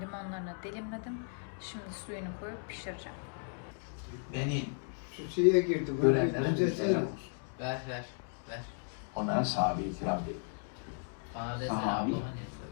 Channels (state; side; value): silent; right; 54 dB below the other